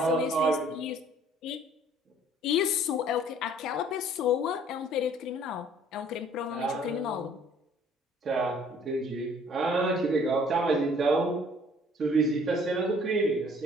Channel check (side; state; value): both; normal; correlation 0.56